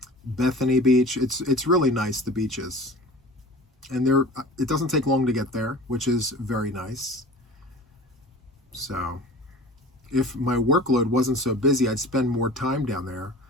Bethany Beach. It's really nice, the beaches. And it doesn't take long to get there, which is very nice. So if my workload wasn't so busy, I'd spend more time down there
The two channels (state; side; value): normal; both; correlation 0.40